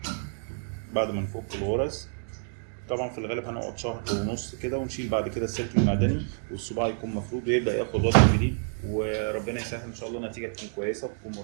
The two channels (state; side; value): silent; left; 59 dB below the other